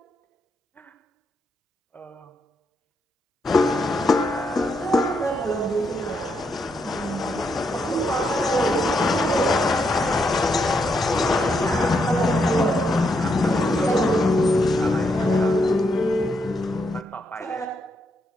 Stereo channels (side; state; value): both; normal; correlation 0.79